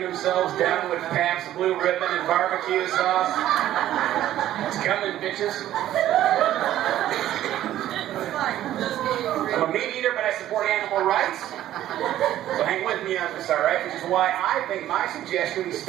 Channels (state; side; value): quieter; left; 12.9 dB